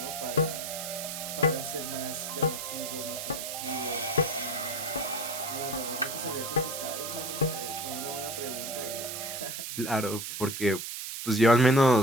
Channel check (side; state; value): right; noise; hiss, 6 dB below the sound